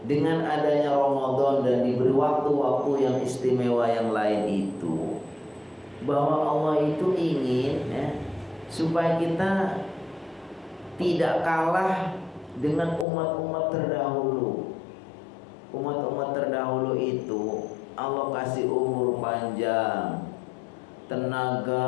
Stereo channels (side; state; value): right; drops out; at 13.1 s